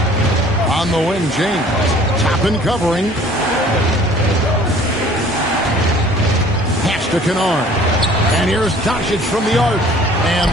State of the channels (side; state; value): both; normal; correlation 0.52